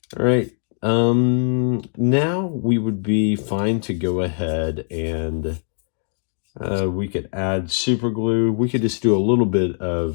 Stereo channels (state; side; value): silent; right; 61 dB below the other